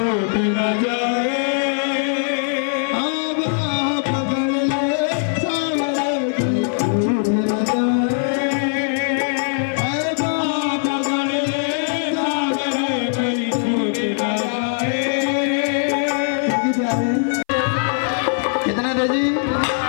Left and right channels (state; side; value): silent; right; 59 dB below the other